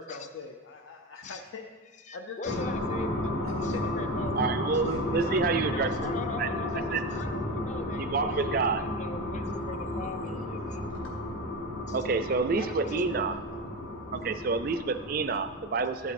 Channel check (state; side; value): normal; both; correlation 0.21